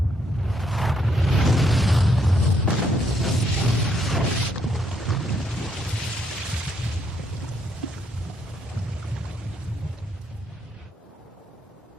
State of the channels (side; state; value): both; normal; correlation 0.73